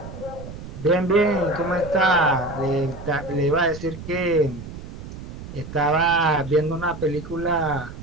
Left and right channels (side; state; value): right; noise; rumble, 12 dB below the sound